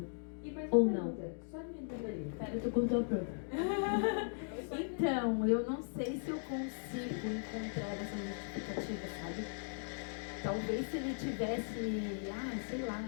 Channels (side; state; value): right; silent; digital silence